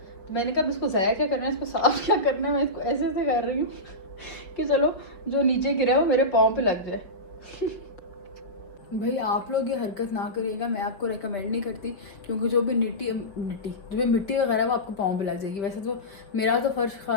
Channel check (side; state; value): right; late; 5.3 ms